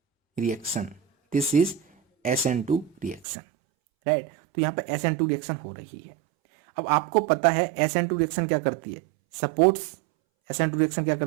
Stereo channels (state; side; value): drops out; left; at 3.2 s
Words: reaction, this is SN2 reaction, right. तो यहाँ पे SN2 रिएक्शन हो रही है। अब आपको पता है SN2 रिएक्शन क्या करती है, सपोर्ट्स, SN2 रिएक्शन क्या